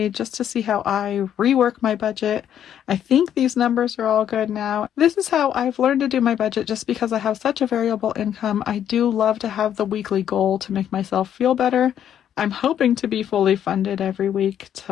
just to see how I rework my budget. I think these numbers are all good now. This is how I've learned to do my budget just because I have such a variable income. I do love to have the weekly goal to make myself feel better. I'm hoping to be fully funded every week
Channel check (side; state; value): right; quieter; 9.9 dB